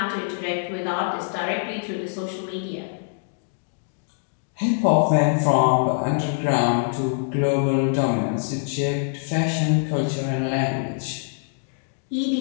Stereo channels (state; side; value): silent; right; digital silence